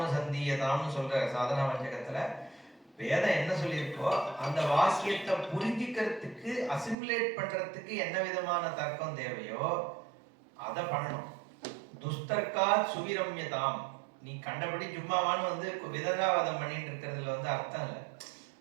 சந்தியதான்னு சொல்ற சாதனா வஞ்சகத்துல வேதம் என்ன சொல்லியிருக்கோ அந்த வாக்கியத்தை புரிஞ்சிக்கிறதுக்கு, அசிமுலேட் பண்றதுக்கு என்ன விதமான தர்க்கம் தேவையோ அதை பண்ணணும். துஸ்தர்க்கா சுவிரம்யதாம். நீ கண்டபடி சும்மாவான்னு விதண்டாவாதம் பண்ணிட்டு இருக்கிறதுல அர்த்தம் இல்லை.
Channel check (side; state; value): left; drops out; at 7.0 s